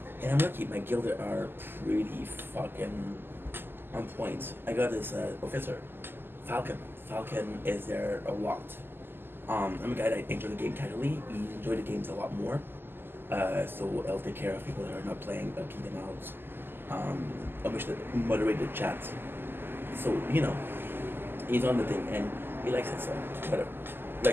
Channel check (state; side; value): late; left; 0.099 ms